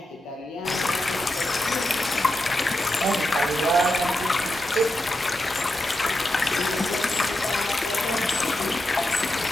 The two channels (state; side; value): normal; both; correlation 0.88